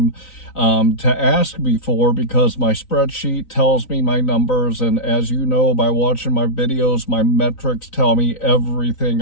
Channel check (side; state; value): right; late; 3.9 ms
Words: to ask me for, because my spreadsheet tells me my numbers. And as you know, by watching my videos, my metrics tell me everything